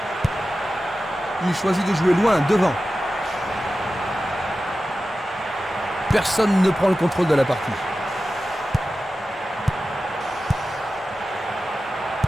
Il choisit de jouer loin, devant. Personne ne prend le contrôle de la partie.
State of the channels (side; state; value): both; normal; correlation 0.94